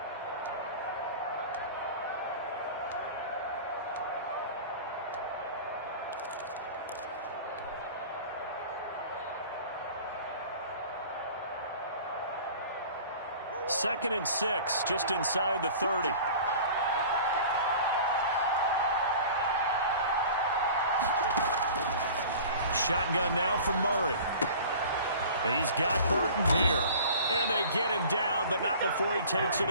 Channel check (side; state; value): both; inverted; correlation -0.42